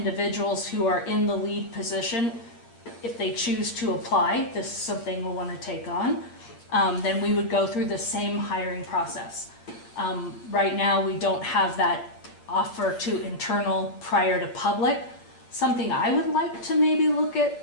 who are in the lead position, if they choose to apply, this is something we'll want to take on, then we would go through the same hiring process. Right now, we don't have that offer to internal prior to public. Something I would like to maybe look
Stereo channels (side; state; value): right; late; 8.8 ms